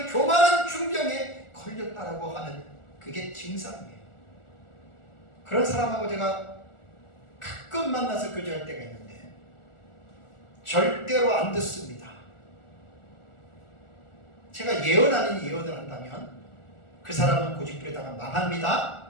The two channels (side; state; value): right; late; 1.4 ms